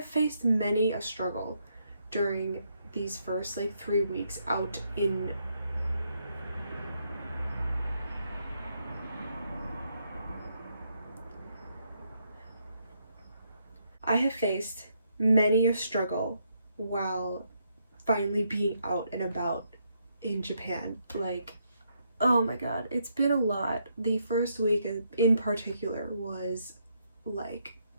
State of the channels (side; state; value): both; inverted; correlation -0.76